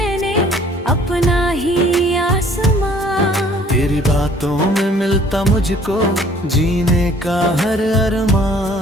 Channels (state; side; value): normal; both; correlation 0.56